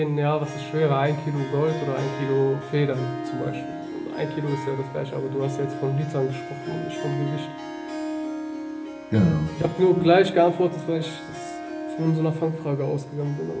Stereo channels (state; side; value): identical; both; correlation 1.00